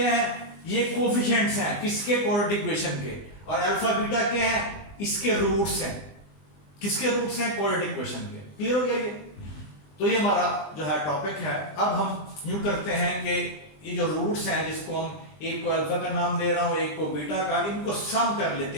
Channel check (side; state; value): right; late; 20 ms